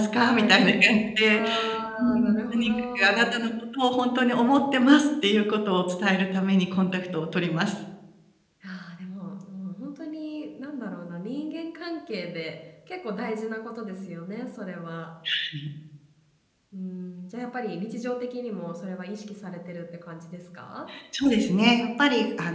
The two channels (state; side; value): identical; both; correlation 1.00